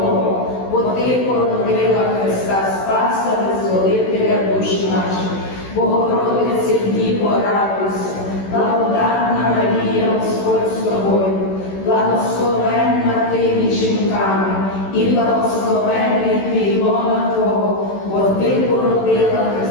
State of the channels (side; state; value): right; late; 16 ms